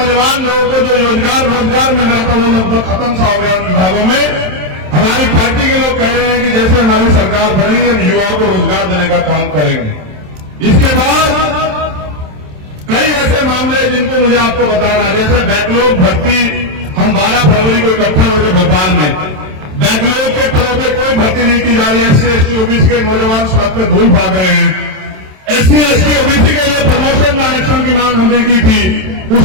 लोगों को जो रोजगार मिल रहा था वो लगभग खत्म सा हो गया उन विभागों में। हमारी पार्टी के लोग कह रहे हैं कि जैसे हमारी सरकार बनेगी हम युवाओं को रोजगार देने का काम करेंगे। इसके बाद कई ऐसे मामले जिनको मुझे आपको बताना है, जैसे बैकलॉग भर्ती हम 12 फरवरी को इकट्ठा हुए थे भोपाल में। बैकलॉग के पदों पर कोई भर्ती नहीं की जा रही है। SC ST OBC के नौजवान सड़क पे धूल भाग रहे हैं। SC ST OBC के लिए प्रमोशन में आरक्षण की मांग हमने की थी, उस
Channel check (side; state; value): left; late; 27 ms